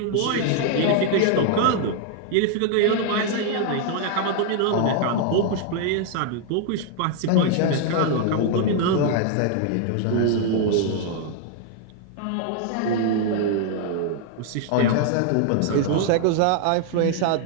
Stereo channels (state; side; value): different; both; correlation 0.00